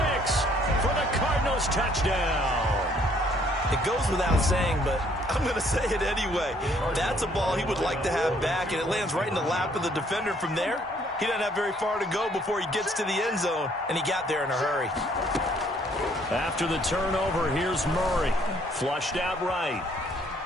for the Cardinals touchdown. It goes without saying, but I'm going to say it anyway. That's a ball he would like to have back, and it lands right in the lap of the defender from there. He doesn't have very far to go before he gets to the end zone, and he got there in a hurry. After the turnover, here's Murray. Flushed out right.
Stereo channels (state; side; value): normal; both; correlation 0.64